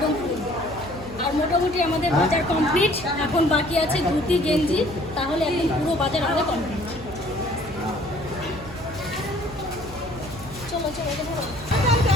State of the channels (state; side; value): noise; right; hum, 16 dB below the sound